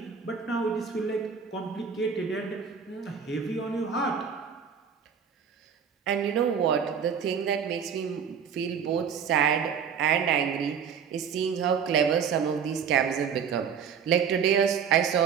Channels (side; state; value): left; quieter; 7.0 dB